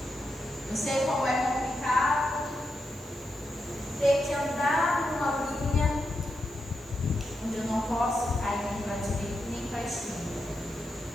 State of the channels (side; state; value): both; normal; correlation 0.86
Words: Eu sei como é complicado ter que andar numa linha onde eu não posso cair nem para a direita nem para a esquerda.